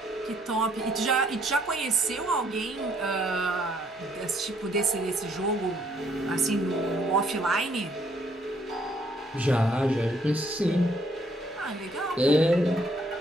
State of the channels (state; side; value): normal; both; correlation 0.67